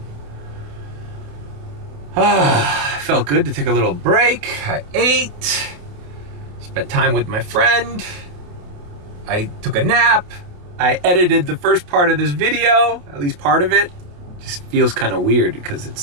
Felt good to take a little break. I ate, spent time with my friend. I took a nap. I edited the first part of this video, at least part of it. Just feels kind of weird because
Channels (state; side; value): late; left; 28 ms